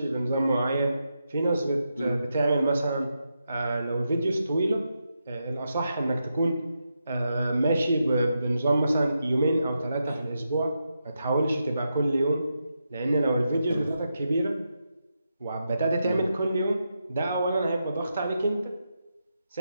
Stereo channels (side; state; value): both; inverted; correlation -0.86